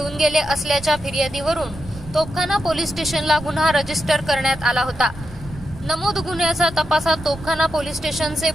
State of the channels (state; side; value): noise; right; rumble, 16 dB below the sound